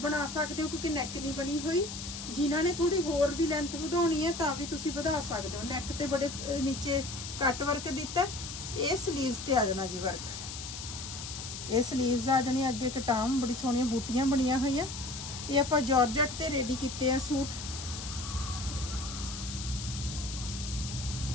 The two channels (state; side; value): noise; left; hiss, 8 dB below the sound